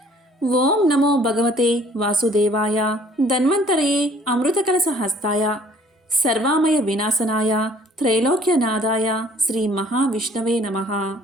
ఓం నమో భగవతే వాసుదేవాయ ధన్వంతరయే అమృత కలశ హస్తాయ సర్వామయ వినాశనాయ త్రైలోక్యనాదాయ శ్రీ మహావిష్ణవే నమః.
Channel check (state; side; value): normal; both; correlation 0.57